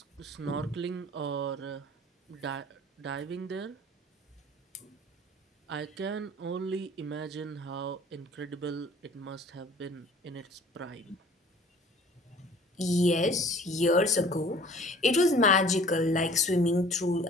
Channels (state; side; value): normal; both; correlation 0.49